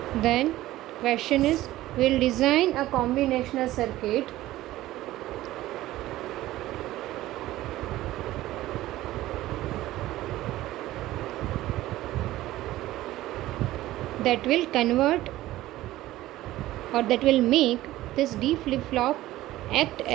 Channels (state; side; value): quieter; left; 15.8 dB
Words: Then question is, we'll design a combinational circuit that will convert or that will make this D flip-flop act